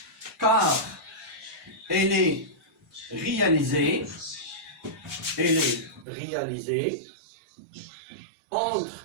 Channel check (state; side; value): drops out; left; at 6.1 s